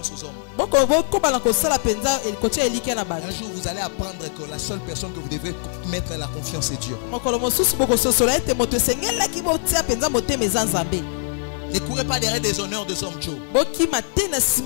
aux hommes. Un jour vous allez apprendre que la seule personne que vous devez mettre la confiance est Dieu. Ne courez pas derrière des honneurs des hommes, Joe.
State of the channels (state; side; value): silent; right; 63 dB below the other